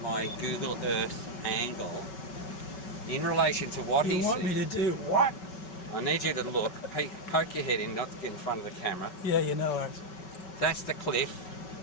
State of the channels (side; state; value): right; late; 5.3 ms